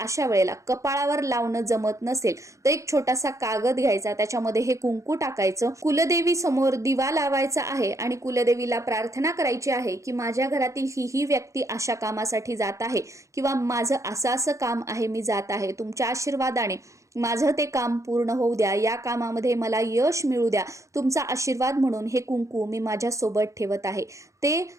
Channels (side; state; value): left; late; 0.15 ms